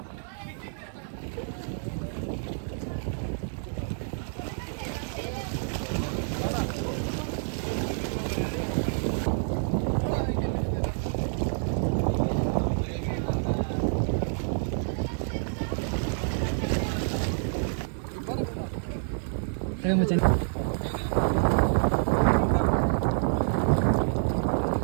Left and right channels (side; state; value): left; silent; 59 dB below the other